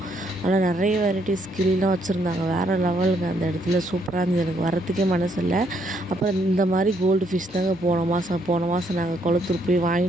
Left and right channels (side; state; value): both; normal; correlation 0.72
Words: ஆனால் நிறைய வெரைட்டிஸ் கிளிலாம் வச்சுருந்தாங்க, வேறு லெவலுங்க. அந்த இடத்துல சூப்பராக இருந்தது, எனக்கு வரத்துக்கே மனசு இல்லை. அப்புறம் இந்த மாதிரி கோல்டு ஃபிஷ் தாங்க போன மாதம் நாங்கள் குளத்தூர் போய்